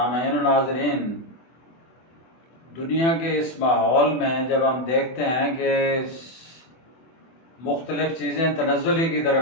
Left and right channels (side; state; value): right; late; 24 ms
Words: و ناظرین، دنیا کے اس ماحول میں جب ہم دیکھتے ہیں کہ مختلف چیزیں تنزلی کی